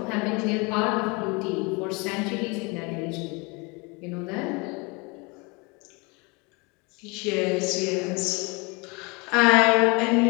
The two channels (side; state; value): right; quieter; 28.6 dB